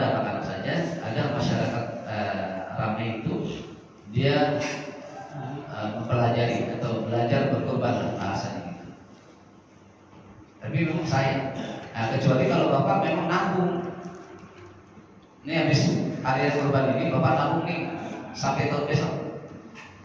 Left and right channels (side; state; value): both; identical; correlation 1.00